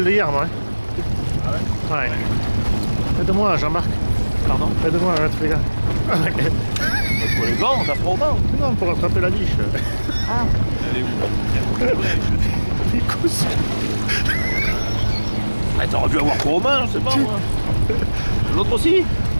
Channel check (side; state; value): both; inverted; correlation -1.00